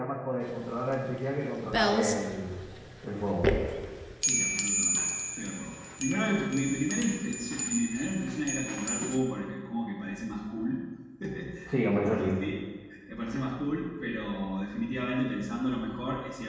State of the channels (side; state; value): both; identical; correlation 1.00